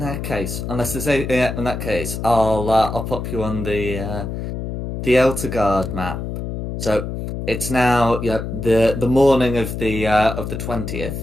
that case, unless there's in that case, I'll pop you on the Eltergard map. So it's now the morning of the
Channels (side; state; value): left; noise; hum, 5 dB below the sound